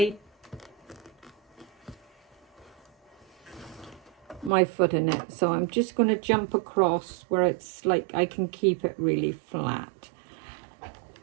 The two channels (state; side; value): drops out; left; at 4.5 s